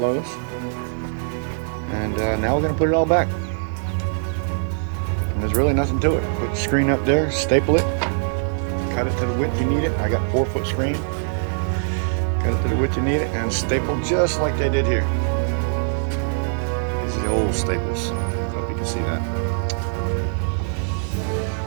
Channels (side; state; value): left; silent; digital silence